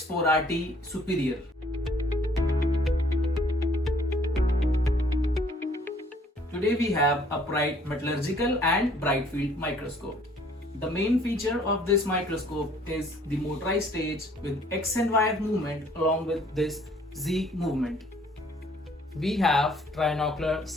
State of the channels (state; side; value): normal; both; correlation 0.60